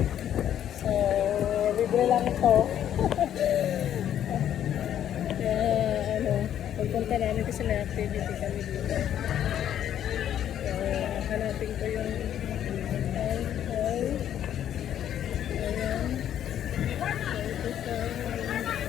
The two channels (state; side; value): quieter; right; 10.5 dB